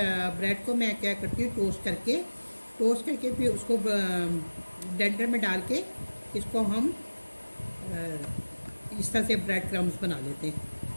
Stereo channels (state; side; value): inverted; both; correlation -1.00